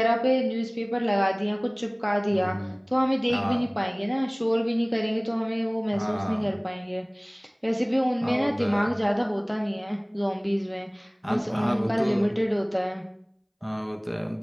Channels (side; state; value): both; identical; correlation 1.00